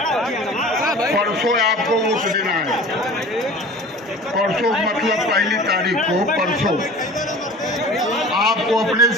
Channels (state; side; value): normal; both; correlation 0.41